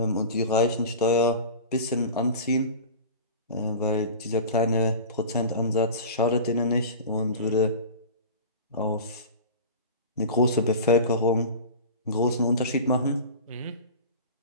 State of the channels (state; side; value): inverted; both; correlation -0.33